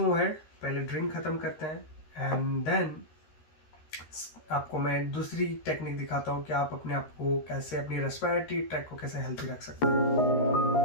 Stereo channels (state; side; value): late; right; 13 ms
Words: ahead. पहले ड्रिंक ख़त्म करते हैं एंड देन आपको मैं दूसरी टेक्निक दिखाता हूँ कि आप अपने आप को कैसे, अपनी रेस्पिरेटरी ट्रैक को कैसे हेल्थी रख सकते हैं।